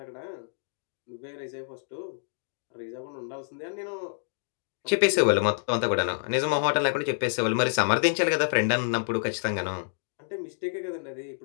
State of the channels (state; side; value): silent; right; digital silence